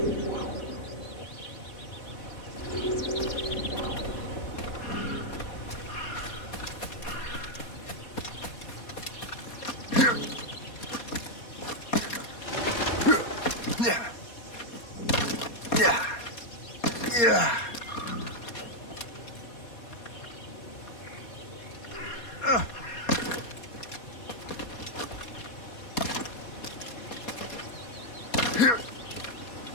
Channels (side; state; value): right; late; 4.2 ms